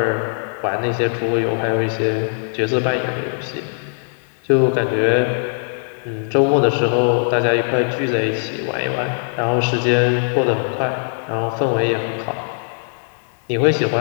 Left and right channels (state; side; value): silent; right; digital silence